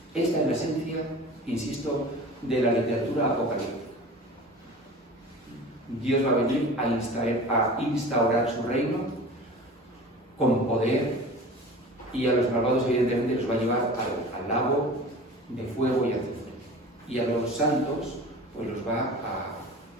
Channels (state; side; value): normal; both; correlation 0.38